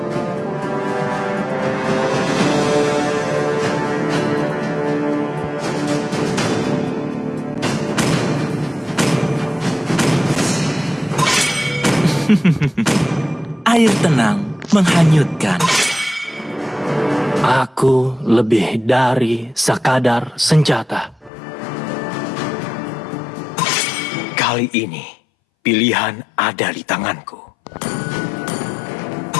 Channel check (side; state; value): right; drops out; at 21.3 s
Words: air tenang menghanyutkan. Aku lebih dari sekadar senjata. Kali ini, pilihan ada di tanganku.